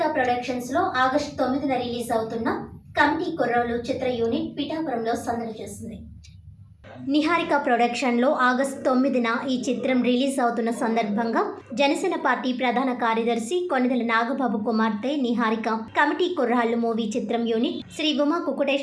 productions లో August 9న release అవుతున్న committee కుర్రోళ్ళు చిత్ర యూనిట్ పిఠాపురంలో సందడి చేసింది. నిహారిక ప్రొడక్షన్లో ఆగస్టు 9న ఈ చిత్రం రిలీజ్ అవుతున్న సందర్భంగా జనసేన పార్టీ ప్రధాన కార్యదర్శి కొనిదెల నాగబాబు కుమార్తె నిహారిక కమిటీ కుర్రాళ్ళు మూవీ చిత్రం యూనిట్ శ్రీ ఉమా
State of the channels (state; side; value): identical; both; correlation 1.00